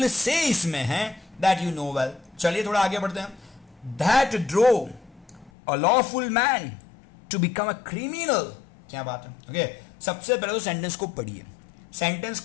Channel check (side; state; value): right; drops out; at 5.5 s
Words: से इसमें है, दैट यू नो वेल। चलिए थोड़ा आगे बढ़ते हैं। That drew a lawful man to become a criminal. क्या बात है। ओके, सबसे पहले तो सेंटेंस को पढ़िए, सेंटेंस